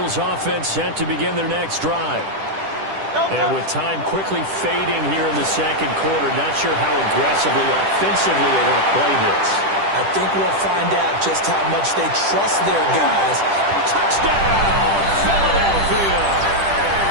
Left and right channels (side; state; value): left; late; 10 ms